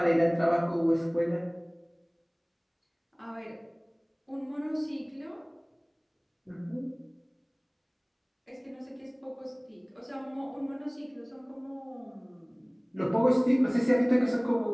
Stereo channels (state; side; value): identical; both; correlation 1.00